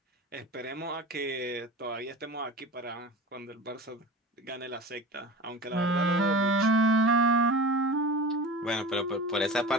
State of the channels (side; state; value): both; normal; correlation 0.34